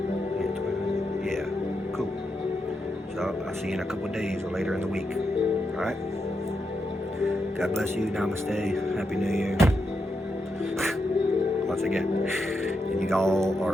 Yeah, cool. So I'll see you in a couple of days or later in the week. Alright? God bless you. Namaste. Happy New Year. Once again. And y'all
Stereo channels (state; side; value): normal; both; correlation 0.84